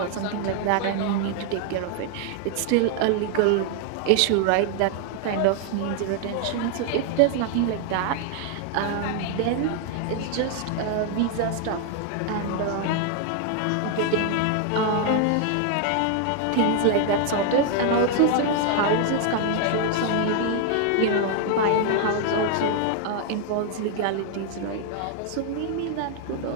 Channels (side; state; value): both; different; correlation 0.00